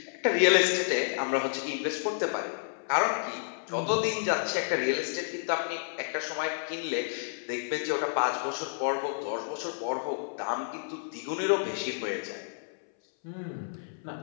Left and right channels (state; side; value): silent; right; 58 dB below the other